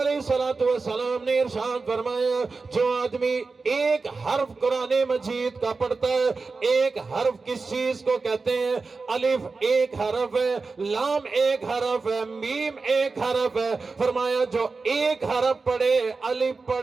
الصلوۃ والسلام نے ارشاد فرمایا, جو آدمی ایک حرف قرآن مجید کا پڑھتا ہے, ایک حرف کس چیز کو کہتے ہیں؟ الف ایک حرف ہے, لام ایک حرف ہے, میم ایک حرف ہے. فرمایا جو ایک حرف پڑھے, الف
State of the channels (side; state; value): left; quieter; 4.1 dB